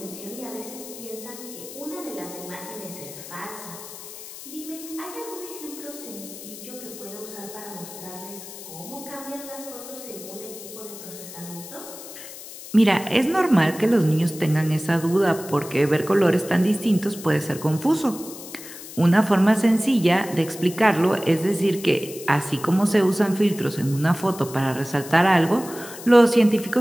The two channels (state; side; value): noise; left; hiss, 14 dB below the sound